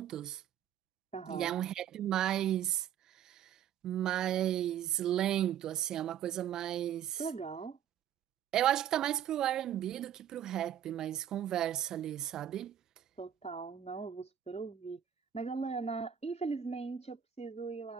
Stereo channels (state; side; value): quieter; left; 9.9 dB